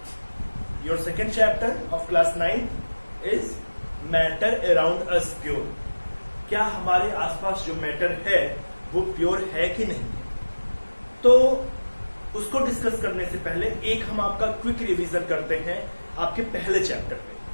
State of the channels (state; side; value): inverted; both; correlation -1.00